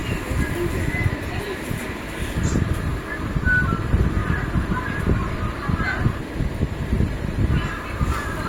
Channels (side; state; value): both; identical; correlation 1.00